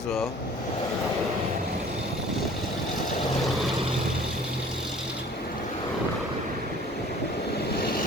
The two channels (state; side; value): normal; both; correlation 0.49